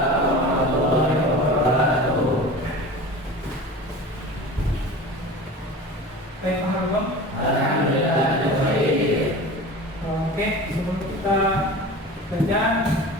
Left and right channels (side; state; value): both; normal; correlation 0.35